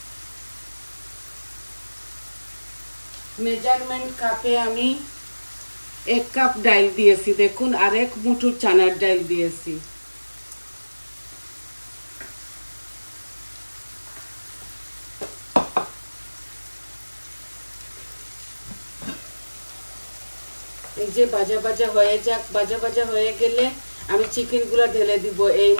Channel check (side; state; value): both; inverted; correlation -1.00